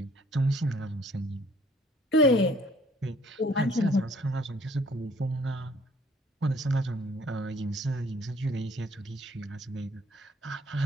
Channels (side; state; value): both; normal; correlation 0.59